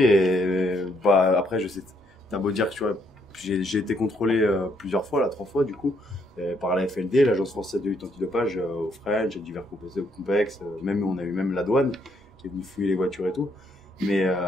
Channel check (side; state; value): both; normal; correlation 0.71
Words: bah, après, je sais, t'as beau dire que tu vois, j'ai été contrôlé plusieurs fois, 3 fois du coup, par la FLD, l'Agence française de lutte antidopage, au French, divers complexes, même on a eu même la douane qui est venue fouiller les voitures et tout. Mais